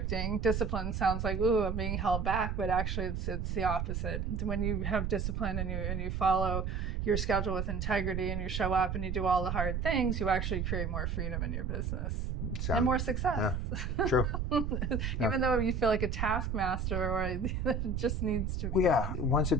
Discipline sounds like, ooh, I'm being held back, but actually it's the opposite. When you have discipline and you follow your schedule with integrity and you show up and you do all the hard things, you actually create more freedom in your business and more success. Yeah, true. Even though you feel like a taskmaster, or it just needs to be. Well, yeah, once it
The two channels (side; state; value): right; noise; rumble, 2 dB below the sound